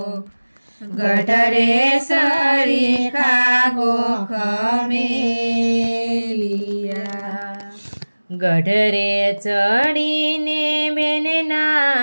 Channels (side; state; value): both; inverted; correlation -1.00